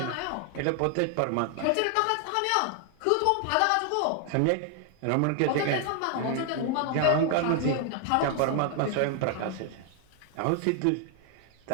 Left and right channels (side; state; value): both; different; correlation 0.00